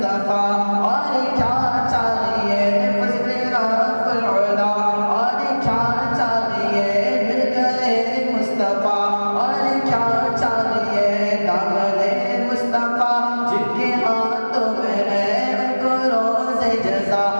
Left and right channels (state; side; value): inverted; both; correlation -1.00